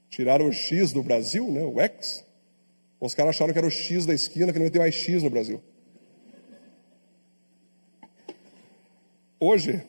Tiraram o X do Brasil, né? O X. Os caras acharam que era o X da esquina, que não ia ter mais X no Brasil. Hoje,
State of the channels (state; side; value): inverted; both; correlation -1.00